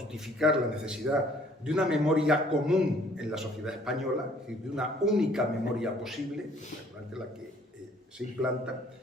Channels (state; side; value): normal; both; correlation 0.58